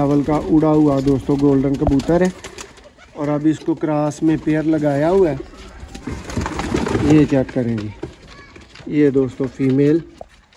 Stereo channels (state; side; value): identical; both; correlation 1.00